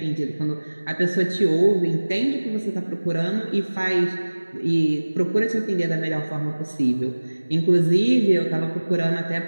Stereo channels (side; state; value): both; inverted; correlation -1.00